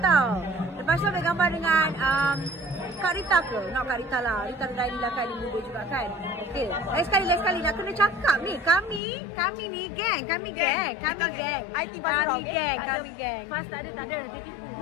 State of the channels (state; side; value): drops out; right; at 9.0 s